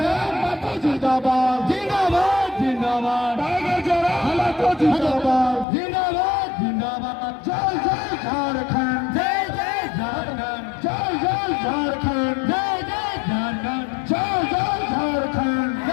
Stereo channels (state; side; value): drops out; right; at 5.7 s